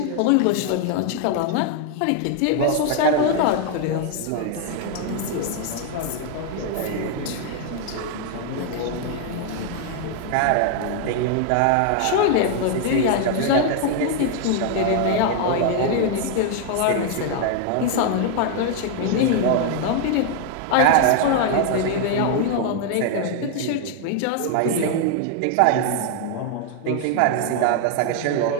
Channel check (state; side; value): different; both; correlation 0.00